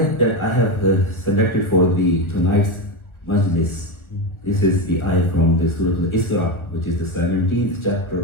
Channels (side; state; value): right; late; 1.4 ms